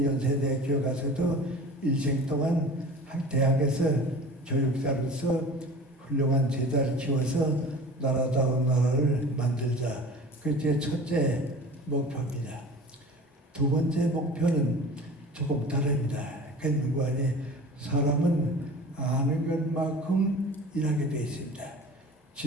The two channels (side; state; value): both; normal; correlation 0.39